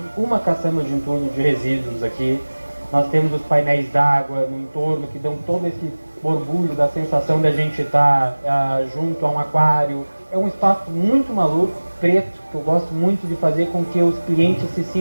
uma caçamba de entulho de resíduos aqui. Nós temos os painéis d'água no entorno que dão todo esse borbulho da sensação de a gente estar junto a um aquário. É um espaço muito maluco, preto, que eu gosto muito de fazer com que os clientes se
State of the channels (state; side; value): inverted; both; correlation -1.00